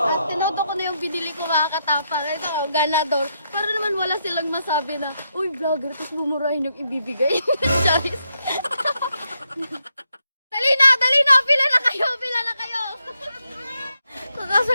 tinodo ko na yung binili ko mga katapang. Ito, ganador. Pero naman wala silang masabi na, uy vlogger, tapos bumurahin yung ibibigay. Charis. Dali na, pila na kayo.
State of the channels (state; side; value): inverted; both; correlation -0.81